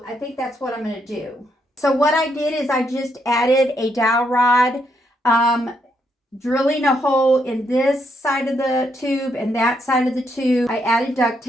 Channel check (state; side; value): normal; both; correlation 0.77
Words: I think that's what I'm going to do. So what I did is I just added a dowel rod, drilling a hole in this side of the tube and that side of the tube. I added duct